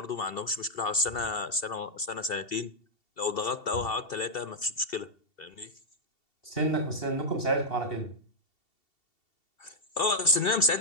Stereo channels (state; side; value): late; right; 2.7 ms